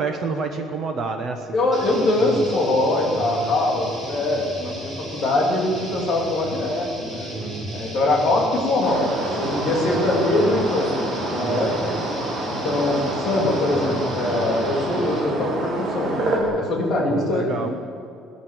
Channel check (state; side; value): normal; both; correlation 0.60